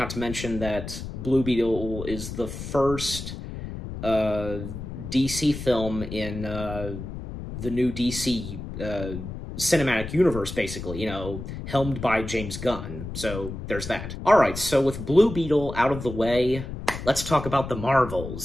to mention that Blue Beetle is the first DC film in the new DC cinematic universe, basically, you know, helmed by James Gunn. So there's that. All right, so with Blue Beetle out of the way, let's talk about the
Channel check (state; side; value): noise; left; rumble, 8 dB below the sound